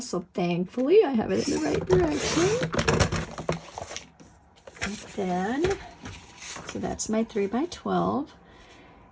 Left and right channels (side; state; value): both; identical; correlation 1.00